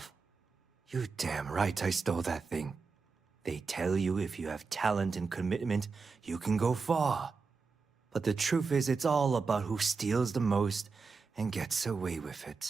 You damn right I stole that thing. They tell you if you have talent and commitment, you can go far. But the truth is, it's all about who steals the most and gets away with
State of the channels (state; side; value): quieter; left; 4.7 dB